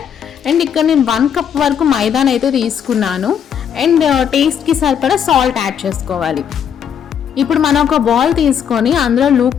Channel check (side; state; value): right; quieter; 8.3 dB